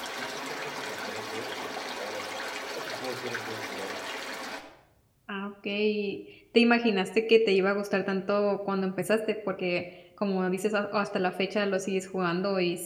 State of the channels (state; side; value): identical; both; correlation 1.00